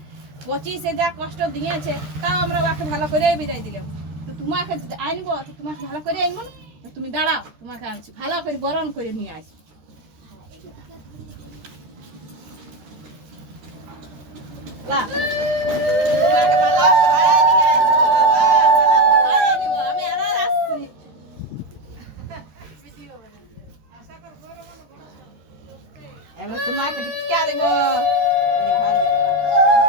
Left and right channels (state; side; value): late; left; 13 ms